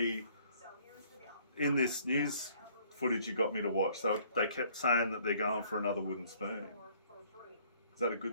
in this news footage you got me to watch, so they kept saying that they're going for another wooden spoon. Is that a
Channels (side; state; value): both; inverted; correlation -0.60